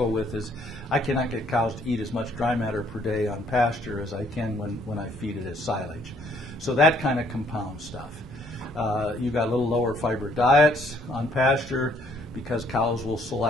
with is I cannot get cows to eat as much dry matter per day on pasture as I can when I feed it as silage. So that kind of compounds stuff. You've got a little lower fiber diets on pasture because cows will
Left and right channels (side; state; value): both; normal; correlation 0.65